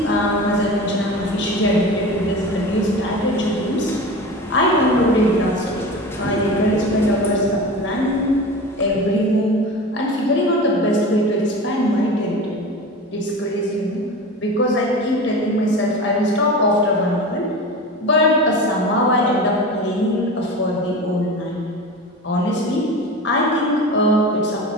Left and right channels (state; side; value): normal; both; correlation 0.31